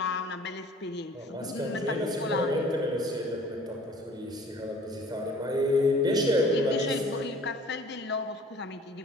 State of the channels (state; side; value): normal; both; correlation 0.50